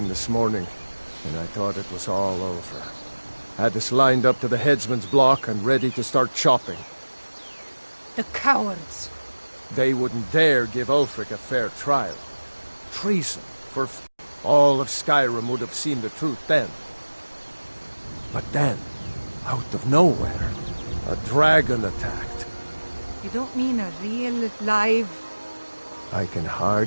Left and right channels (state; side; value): inverted; both; correlation -1.00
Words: this morning, and I thought it was all over. Had us lined up to the headsman's block and ready to start chopping. The cowards! They wouldn't dare give Ulfric a fair trial. Treason for all of Skyrim would have seen the truth then. But then, out of nowhere, a dragon attacked. You don't mean a real, live... I can